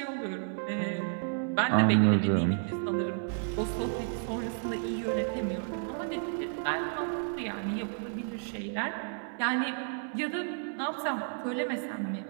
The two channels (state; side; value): silent; left; digital silence